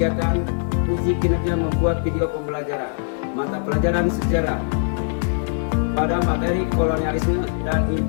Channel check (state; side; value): silent; right; digital silence